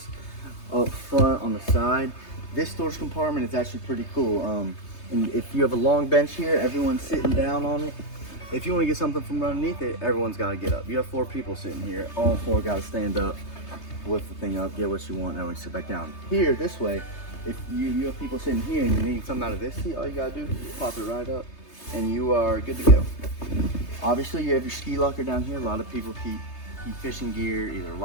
up front, on the side. This storage compartment is actually pretty cool. And if you have a long bench here, everyone's sitting down on it. If you want to get something from underneath it, everyone's got to get up. You have 4 people sitting here. All 4 got to stand up, lift the thing up, get what you want, and then we sit back down. Here, this way, if you have people sitting here and you need something out of this seat, all you got to do is pop it right up, and you are good to go. Obviously, you have your ski locker down here. A lot of people keep fishing gear, either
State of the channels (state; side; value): late; right; 3.3 ms